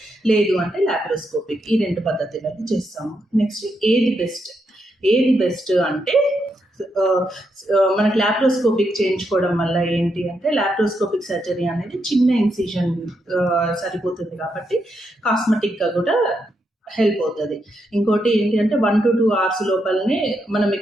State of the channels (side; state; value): both; normal; correlation 0.81